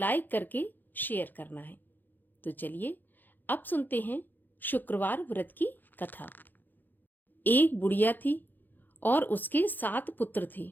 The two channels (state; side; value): late; right; 0.088 ms